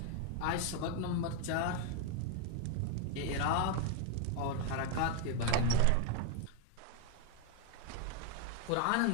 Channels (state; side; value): different; both; correlation 0.01